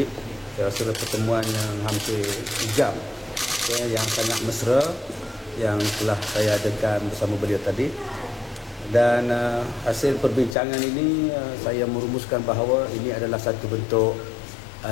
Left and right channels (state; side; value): drops out; right; at 10.6 s